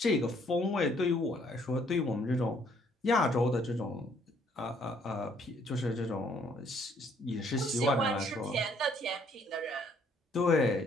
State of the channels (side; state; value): both; normal; correlation 0.64